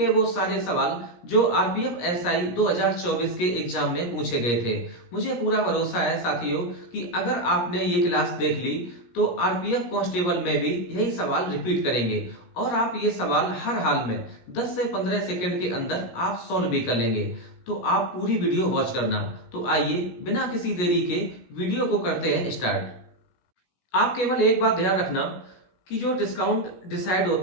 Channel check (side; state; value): right; late; 17 ms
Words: वो सारे सवाल जो आरपीएफ एसआई 2024 के एग्जाम में पूछे गए थे। मुझे पूरा भरोसा है साथियों कि अगर आपने ये क्लास देख ली तो आरपीएफ कांस्टेबल में भी यही सवाल रिपीट करेंगे और आप ये सवाल हर हाल में 10 से 15 सेकंड के अंदर आप सॉल्व भी कर लेंगे। तो आप पूरी वीडियो वॉच करना। तो आइए बिना किसी देरी के वीडियो को करते हैं स्टार्ट। आप केवल एक बात ध्यान रखना कि जो डिस्काउंट डिसाइड